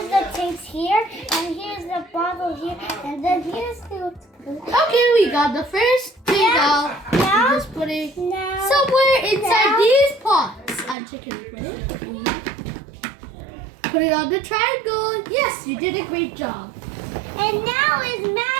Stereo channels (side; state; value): left; drops out; at 11.0 s